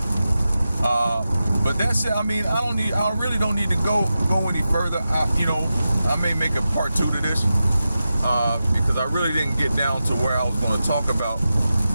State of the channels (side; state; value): both; inverted; correlation -0.92